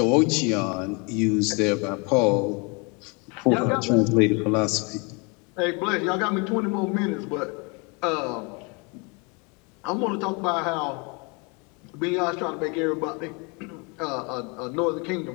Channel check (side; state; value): right; quieter; 31.0 dB